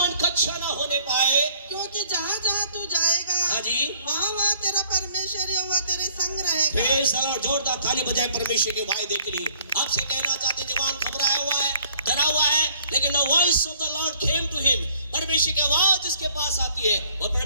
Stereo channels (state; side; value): inverted; both; correlation -0.59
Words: कच्चा ना होने पाए, क्योंकि जहाँ जहाँ तू जाएगा, हाँ जी, वहाँ वहाँ तेरा परमेश्वर यहोवा तेरे संग रहेगा। Praise the Lord. जोरदार ताली बजाए परमेश्वर के वायदे के लिए। आपसे कहना चाहते जवान घबराया हुआ है, डरा हुआ है, लेकिन the voice of the lord came to him, परमेश्वर की आवाज जिसके पास आती है और